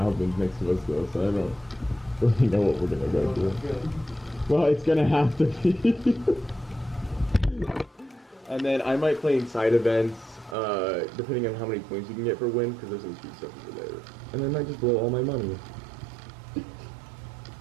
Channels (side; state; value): left; drops out; at 10.6 s